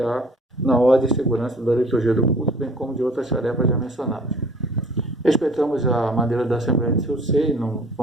na ordem e segurança da liturgia do culto, bem como de outras tarefas já mencionadas. Respeitamos a maneira da Assembleia de seu seio,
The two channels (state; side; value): normal; both; correlation 0.52